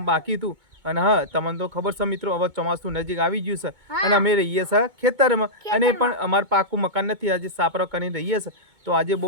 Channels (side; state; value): left; late; 2.2 ms